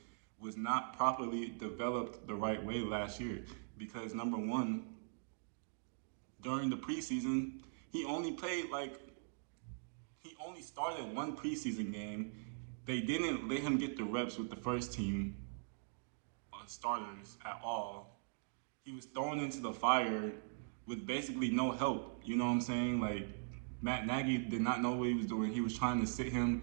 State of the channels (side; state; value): left; silent; digital silence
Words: was not properly developed the right way last year because number one, during the preseason, he only started one preseason game. They didn't let him get the reps with the first team starters at all. He was thrown into the fire with basically no help. You know what I'm saying? Like Matt Nagy did not know what he was doing. He was trying to sit